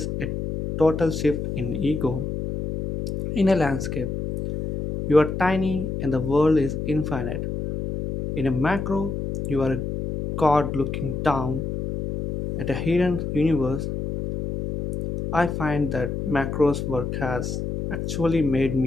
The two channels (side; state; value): left; noise; hum, 4 dB below the sound